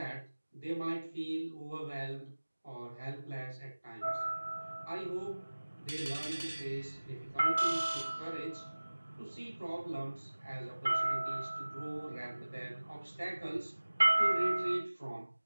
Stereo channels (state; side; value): inverted; both; correlation -1.00